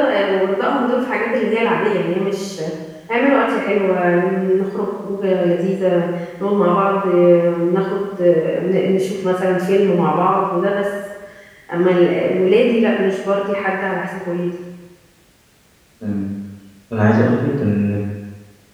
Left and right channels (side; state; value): both; identical; correlation 1.00